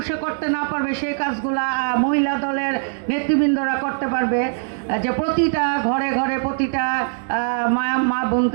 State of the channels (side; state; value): left; silent; digital silence